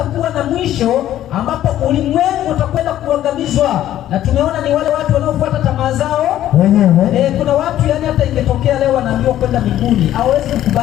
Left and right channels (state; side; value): quieter; right; 12.5 dB